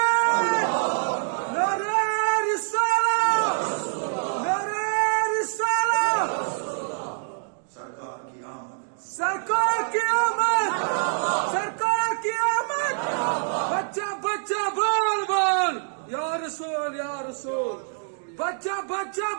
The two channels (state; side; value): silent; left; digital silence